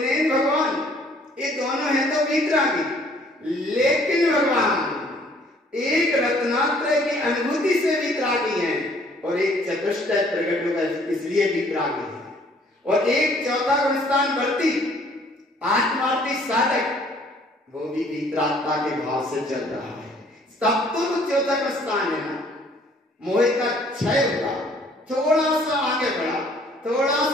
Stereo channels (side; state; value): both; normal; correlation 0.59